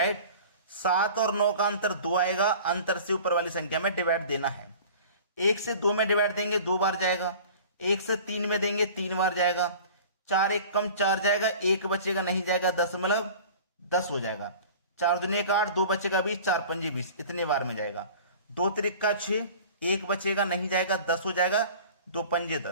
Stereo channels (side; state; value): both; inverted; correlation -0.42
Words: 7 और 9 का अंतर 2 आएगा, अंतर से ऊपर वाली संख्या में डिवाइड देना है। 1 से 2 में डिवाइड देंगे 2 बार जाएगा, 1 से 3 में देंगे 3 बार जाएगा। 4 1 कम 4 जाएगा, 1 बचेगा नहीं जाएगा, 10 हो जाएगा। 4 दूनी 8, 2 बचेगा 20, 4 पंजे 20, इतने बार में जाएगा। 2 त्रिका 6, 1 बचेगा नहीं जाएगा, 10 हो जाएगा, 2 पंजे